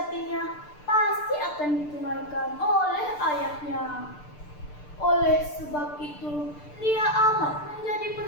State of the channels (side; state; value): right; late; 6.7 ms